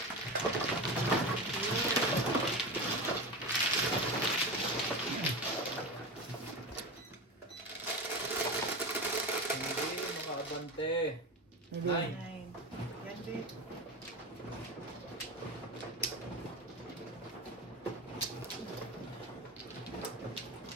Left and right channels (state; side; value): normal; both; correlation 0.23